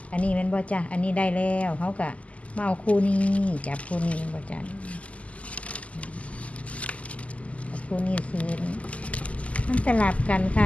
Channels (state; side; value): late; right; 0.067 ms